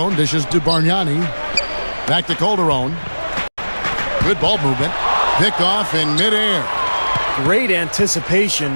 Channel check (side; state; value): both; inverted; correlation -1.00